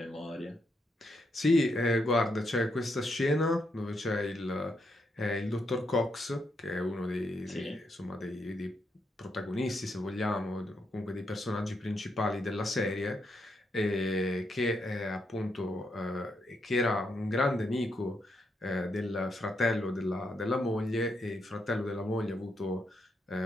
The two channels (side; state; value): both; normal; correlation 0.80